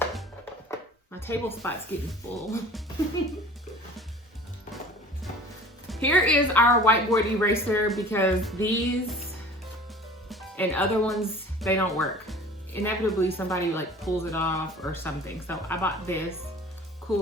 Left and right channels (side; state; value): both; normal; correlation 0.44